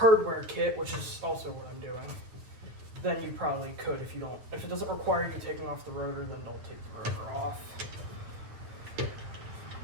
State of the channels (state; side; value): late; left; 9.1 ms